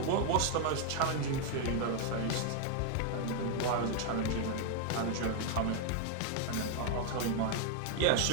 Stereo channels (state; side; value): different; both; correlation 0.00